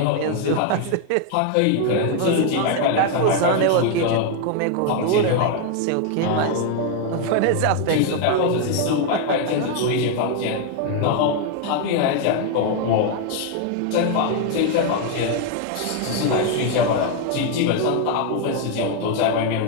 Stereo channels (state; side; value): different; both; correlation 0.01